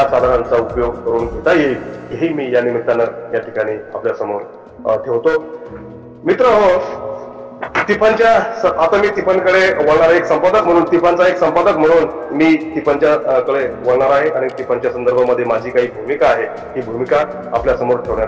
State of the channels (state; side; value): identical; both; correlation 1.00